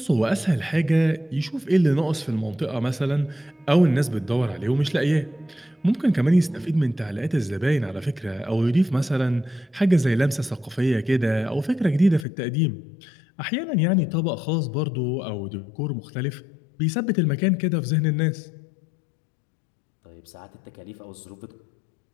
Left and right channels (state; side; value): drops out; right; at 12.2 s